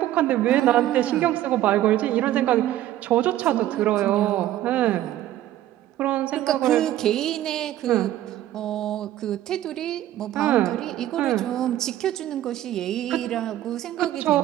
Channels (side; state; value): left; quieter; 13.5 dB